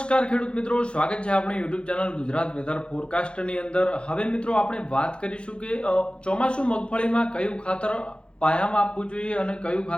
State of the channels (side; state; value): right; late; 0.055 ms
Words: ખેડૂત મિત્રો, સ્વાગત છે આપણી યુટ્યુબ ચેનલ ગુજરાત વેધર ફોરકાસ્ટની અંદર. હવે મિત્રો આપણે વાત કરીશું કે ચોમાસું મગફળીમાં કયું ખાતર પાયામાં આપવું જોઈએ અને કયું